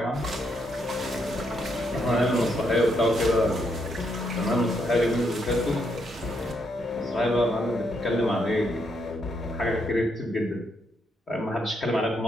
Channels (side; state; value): both; normal; correlation 0.77